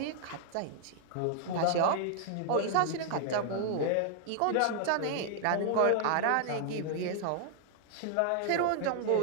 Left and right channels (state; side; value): different; both; correlation 0.00